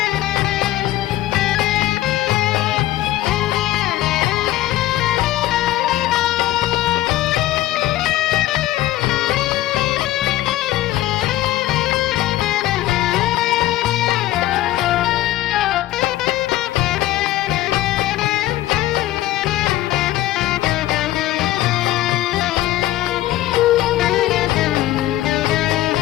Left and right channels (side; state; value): right; quieter; 15.1 dB